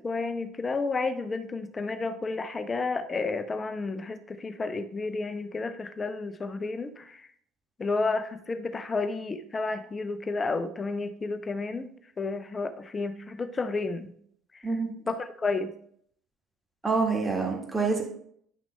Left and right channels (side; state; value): both; normal; correlation 0.80